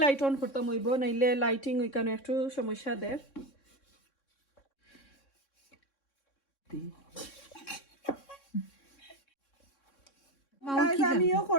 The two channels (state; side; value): late; right; 3.6 ms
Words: লাইট অন করতাম হইব নাইলে লাইটিং ওইখানে একটু সমস্যা দেয় আমিও